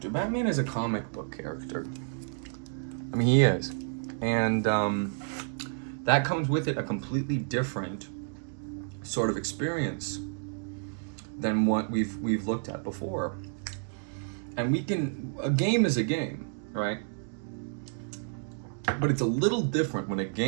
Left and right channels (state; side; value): silent; left; digital silence